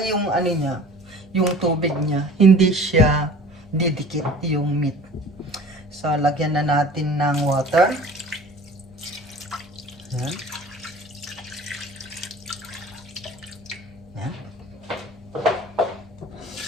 yung, niya, yung tubig niya, hindi siya didikit yung meat. So, lagyan na natin ng water. Ayan. Ayan.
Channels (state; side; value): normal; both; correlation 0.44